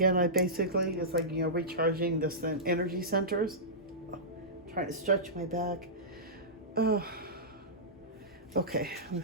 It's like, recharging the energy centers. Trying to stretch my back. Oh, okay,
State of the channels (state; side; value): normal; both; correlation -0.17